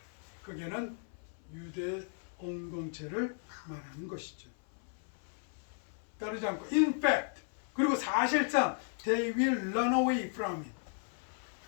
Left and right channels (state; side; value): silent; right; 54 dB below the other